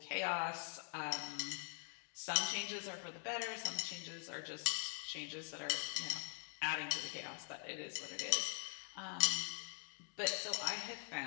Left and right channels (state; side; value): quieter; right; 34.4 dB